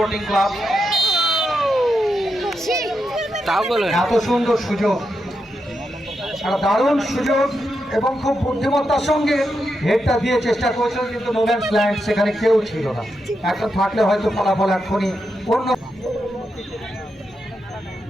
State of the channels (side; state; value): both; normal; correlation 0.85